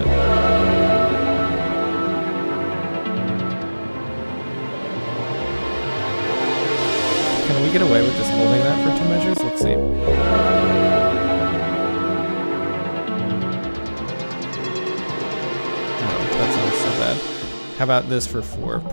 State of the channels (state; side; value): inverted; both; correlation -1.00